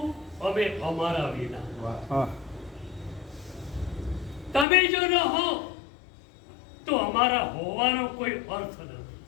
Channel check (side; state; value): right; drops out; at 4.7 s